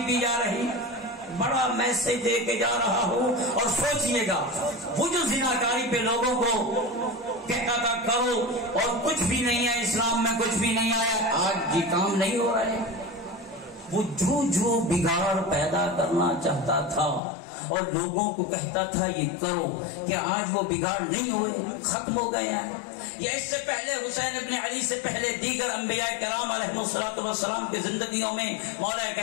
پی جا رہی، بڑا میسج دے کے جا رہا ہوں۔ اور سوچئے گا وہ جو زناکاری پہ لوگوں کو کہتا تھا کرو اور کچھ بھی نہیں ہے، اسلام میں کچھ بھی نہیں آیا، آج یہ کام نہیں ہو رہا ہے۔ وہ جو بگاڑ پیدا کرنا چاہتا تھا اور لوگوں کو کہتا تھا یہ کرو، کیا آج وہ بگاڑ نہیں ہوئے، ختم ہو گئے ہیں؟ یا اس سے پہلے حسین ابن علی سے پہلے دیگر انبیاء کرام علیہ الصلوۃ والسلام کی زندگیوں میں، مولا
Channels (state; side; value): drops out; right; at 17.2 s